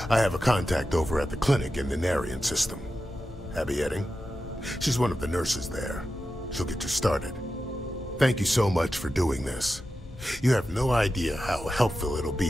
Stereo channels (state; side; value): normal; both; correlation 0.91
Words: I have a contact over at the clinic in the Narian system. Abby Edding? She's one of the nurses there. She'll get you started. Thank you so much for doing this. You have no idea how helpful it'll